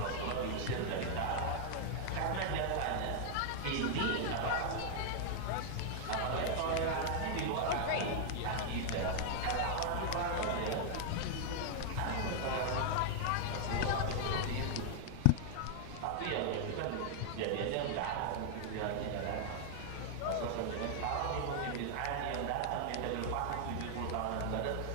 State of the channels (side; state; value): both; different; correlation -0.01